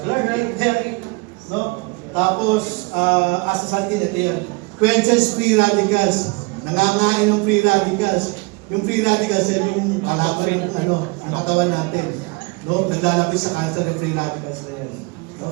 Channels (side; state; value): left; quieter; 28.0 dB